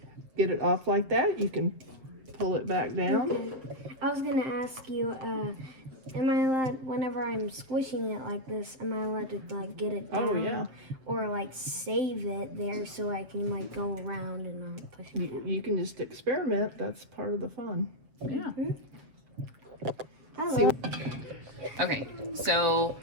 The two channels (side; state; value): left; late; 7.4 ms